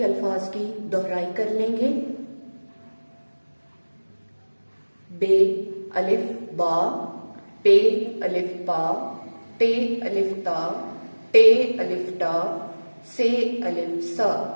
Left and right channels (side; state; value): both; inverted; correlation -1.00